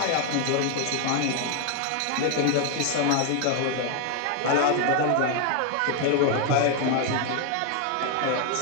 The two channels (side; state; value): both; different; correlation 0.00